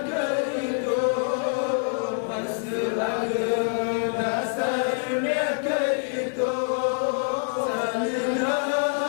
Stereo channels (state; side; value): silent; right; digital silence